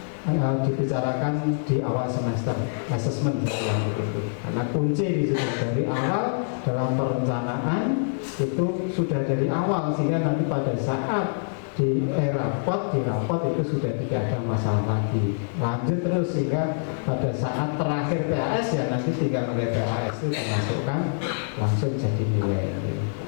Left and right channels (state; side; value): silent; right; digital silence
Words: dibicarakan di awal semester asesmen karena kunci di situ dari awal dalam perencanaan itu sudah dari awal sehingga nanti pada saat di rapot itu sudah tidak ada masalah lagi, lanjut terus sehingga pada saat terakhir PAS ya nanti tinggal nilai PAS itu dimasukkan langsung jadi nilai.